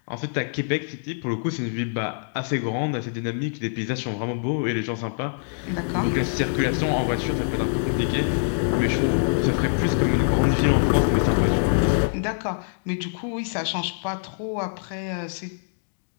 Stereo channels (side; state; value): right; silent; digital silence